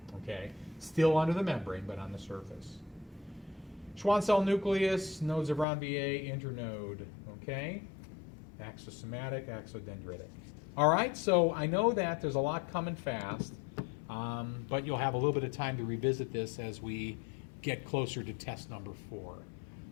Okay, still under the membrane, but on the surface. Schwann cell nucleus, nodes of Ranvier, internode. Okay, axosomatic, axodendritic. All right, so I know that there's a lot coming fast, but you'll have a little bit of time to revisit this as we get closer to test number 4.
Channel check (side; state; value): right; drops out; at 5.7 s